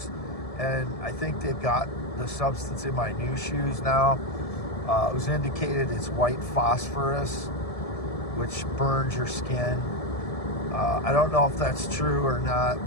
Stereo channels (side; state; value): right; late; 1.7 ms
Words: and I think they've got the substance in my new shoes now. It was indicated it's white phosphorus, which burns your skin. I don't know if that's true or not,